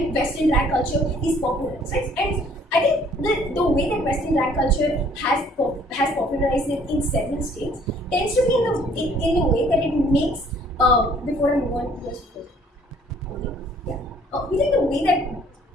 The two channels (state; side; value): normal; both; correlation 0.58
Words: Western drag culture is popularized, right? And I think the way that Western drag culture has popularized it in several states tends to be in the way that it makes. Before I move on, yes, yeah. We think the